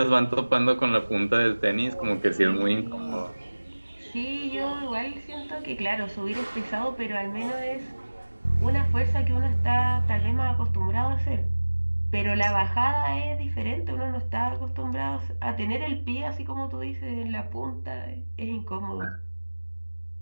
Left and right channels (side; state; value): both; inverted; correlation -1.00